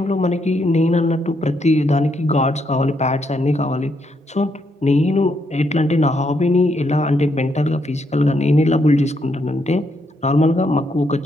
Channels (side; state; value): both; normal; correlation 0.76